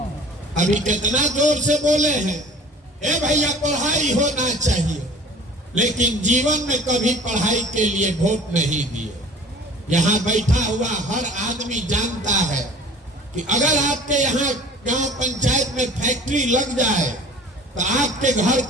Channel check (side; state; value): both; normal; correlation 0.45